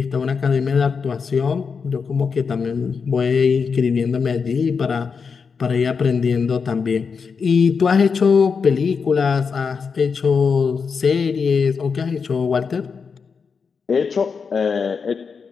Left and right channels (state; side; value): quieter; right; 5.6 dB